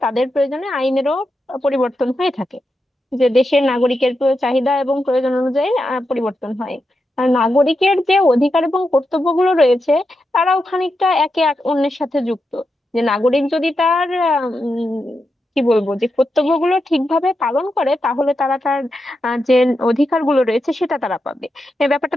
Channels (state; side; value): normal; both; correlation 0.87